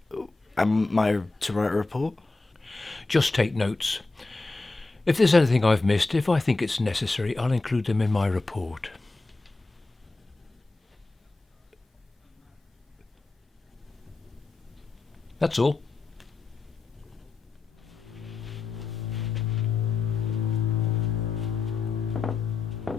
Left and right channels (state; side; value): quieter; right; 3.6 dB